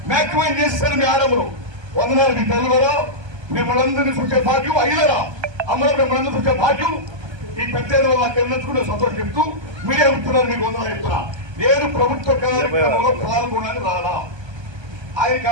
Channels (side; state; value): left; late; 1.3 ms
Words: మ్యాక్సిమైజ్ చేస్తారు మీ ఆడములు. వందనాలు మీ తల్లులరా, మిమ్మల్ందరినీ చూసే భాగ్యం అయ్యలరా, అమ్మలు మిమ్మల్ని చూసే భాగ్యం ఈ పెద్దల వల్ల తెలుసుకునే సంతోషం చెప్తూ మీరే ఉంటున్నారు. మీకు వందనాలు చెప్తున్నా. నేను ప్రభుత్వ కార్యక్రమంలో పాల్గొనని రాలా, ఆయన